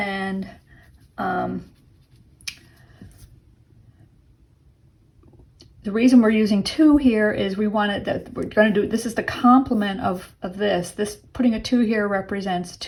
the reason we're using 2 here is we're going to do, this is the complement of this. Putting a 2 here represents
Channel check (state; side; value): identical; both; correlation 1.00